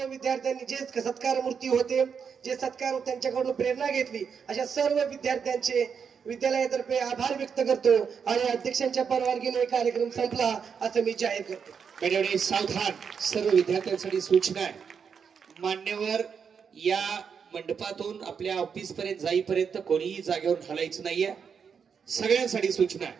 विद्यार्थ्यांनी जे सत्कार मूर्ती होते, जे सत्कार त्यांच्याकडून प्रेरणा घेतली, अशा सर्व विद्यार्थ्यांचे विद्यालयातर्फे आभार व्यक्त करतो आणि अध्यक्षांच्या परवानगीने कार्यक्रम संपला असं मी जाहीर करतो. त्यावेळी सावधान, सर्व विद्यार्थ्यांसाठी सूचना आहे. मान्यवर या मंडपातून आपल्या ऑफिस पर्यंत जाईपर्यंत कोणीही जागेवर हलायचं नाहीये. सगळ्यांसाठी सूचना आहे.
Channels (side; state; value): left; quieter; 6.6 dB